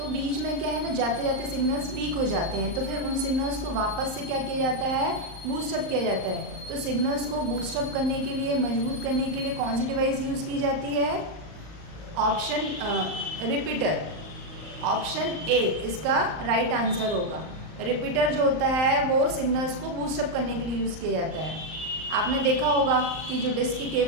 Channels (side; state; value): left; late; 39 ms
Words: बीच में क्या है ना, जाते जाते सिग्नल्स वीक हो जाते हैं, तो फिर उन सिग्नल्स को वापस से क्या किया जाता है? बूस्टअप किया जाता है। तो सिग्नल्स को बूस्टअप करने के लिए, मजबूत करने के लिए कौन सी डिवाइस यूज़ की जाती है? ऑप्शन रिपीटर, ऑप्शन ए इसका राइट आंसर होगा। रिपीटर जो होता है वो सिग्नल्स को बूस्टअप करने के लिए यूज़ किया जाता है। आपने देखा होगा कि जो डिस्क की